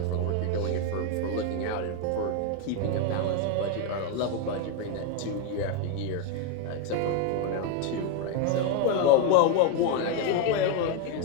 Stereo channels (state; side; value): different; both; correlation 0.01